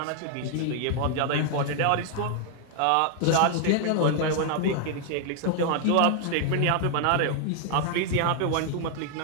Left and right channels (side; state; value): both; different; correlation 0.00